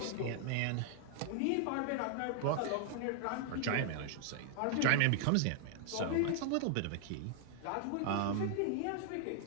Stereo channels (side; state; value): both; different; correlation 0.00